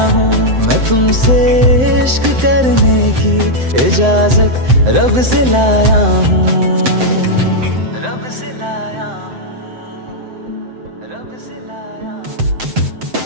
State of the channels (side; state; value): left; late; 7.7 ms